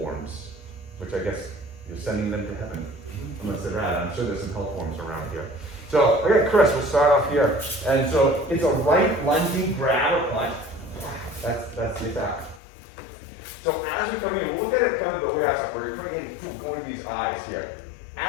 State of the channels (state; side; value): drops out; right; at 12.6 s